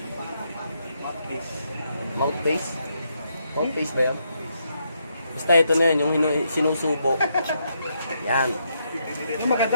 Mouthpiece. Mouthpiece ba yan? Basta ito na yun, yung sinusubo. Yan. Yung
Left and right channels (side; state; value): both; inverted; correlation -0.78